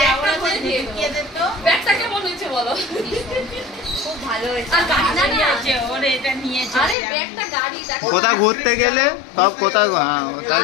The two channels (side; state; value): right; drops out; at 7.0 s